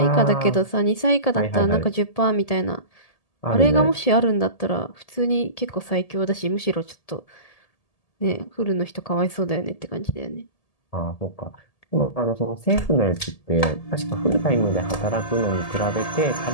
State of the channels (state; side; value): late; right; 1.8 ms